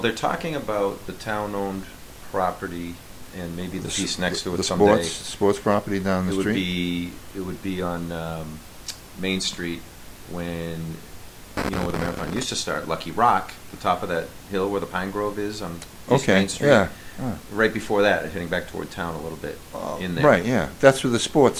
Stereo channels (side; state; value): both; identical; correlation 1.00